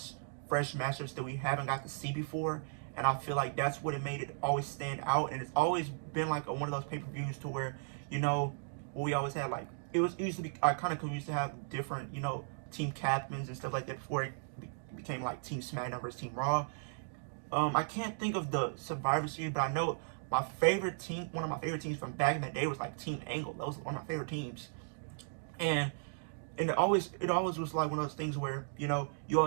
fresh matchups that we haven't got to see before. And I feel like that's what it made it always stand out. And it's always been like one of those pay-per-views to where, we always had like, it used to be, I kind of used to have different, team captains and stuff like that before it became like Team SmackDown versus Team Raw. I can't think of the Survivor Series, but I know my favorite team, one of my favorite teams from back in the day was like Team Angle. That was one of my favorite teams. And it always was like one of those things where, you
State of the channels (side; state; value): left; silent; digital silence